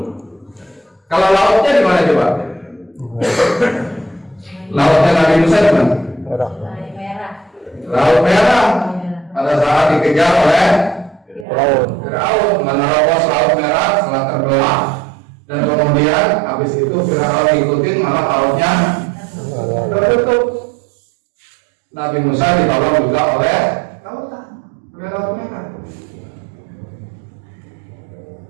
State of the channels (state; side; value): drops out; left; at 11.5 s